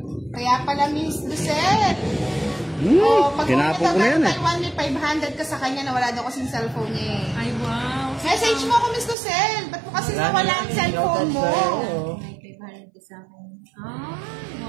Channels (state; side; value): drops out; left; at 9.2 s